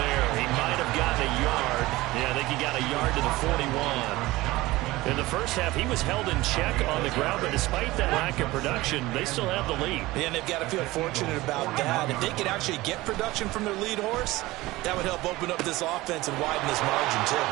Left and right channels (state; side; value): quieter; left; 19.1 dB